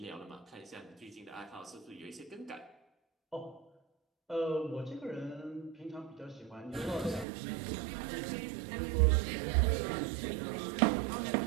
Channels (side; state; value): left; drops out; at 7.2 s